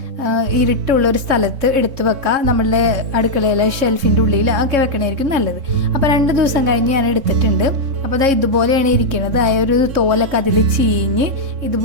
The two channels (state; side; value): late; left; 3.6 ms